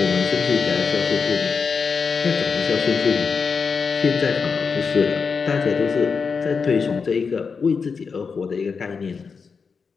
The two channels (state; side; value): quieter; right; 5.4 dB